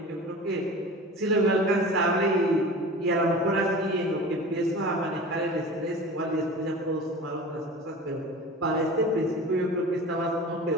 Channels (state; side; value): normal; both; correlation 0.36